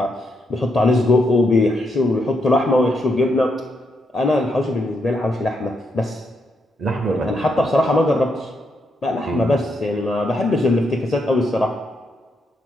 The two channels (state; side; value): normal; both; correlation 0.79